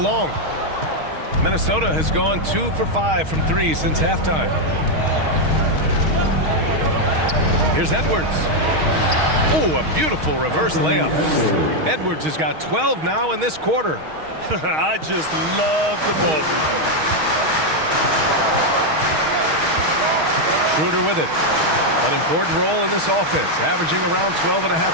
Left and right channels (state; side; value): late; left; 6.4 ms